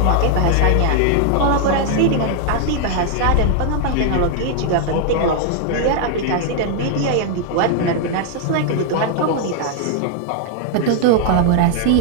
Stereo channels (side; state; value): both; different; correlation 0.00